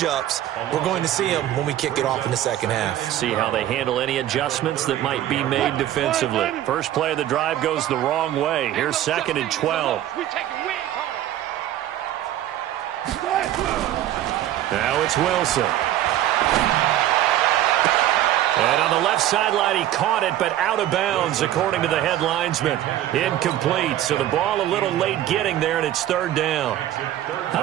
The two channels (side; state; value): left; quieter; 12.8 dB